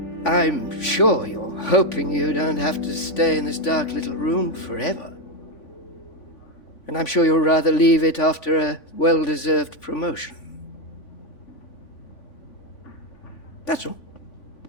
I'm sure you're hoping you don't have to stay in this dark little room forever. And I'm sure you'll rather leave it after a well-deserved promotion. That's all.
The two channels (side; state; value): right; late; 3.5 ms